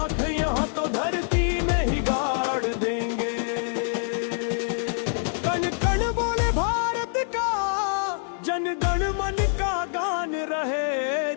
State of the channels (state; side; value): silent; right; digital silence